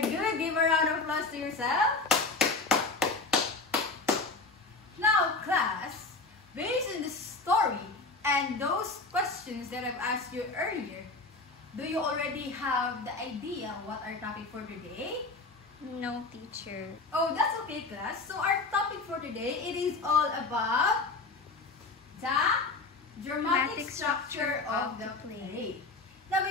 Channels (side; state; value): right; quieter; 3.7 dB